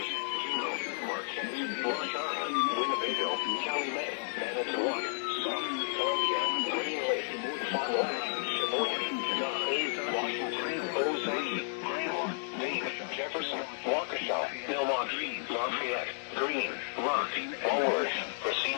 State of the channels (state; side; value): silent; right; digital silence